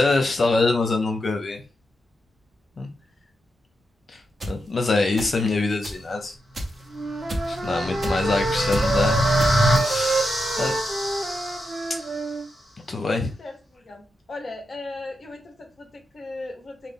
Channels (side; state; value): both; normal; correlation 0.86